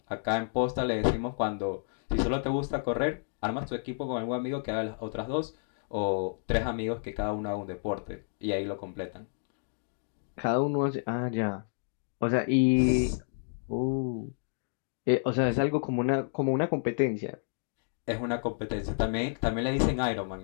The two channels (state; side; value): silent; right; digital silence